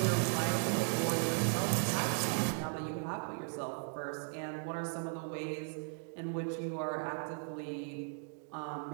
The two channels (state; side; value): silent; left; 53 dB below the other